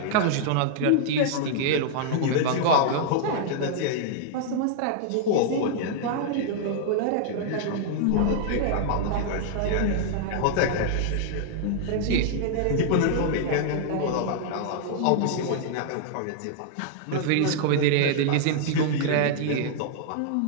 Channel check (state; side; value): different; both; correlation -0.01